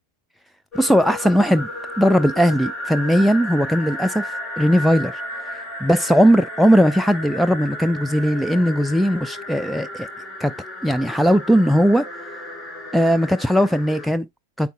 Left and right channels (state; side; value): normal; both; correlation 0.92